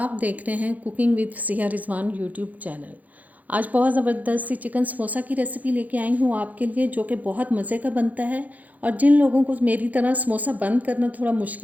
देख रहे हैं cooking with Fasiha Rizwan YouTube channel. आज बहुत ज़बरदस्त सी चिकन समोसा की रेसिपी लेके आई हूँ आपके लिए, जो कि बहुत मज़े का बनता है। और जिन लोगों को मेरी तरह समोसा बंद करना थोड़ा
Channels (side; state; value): left; late; 0.078 ms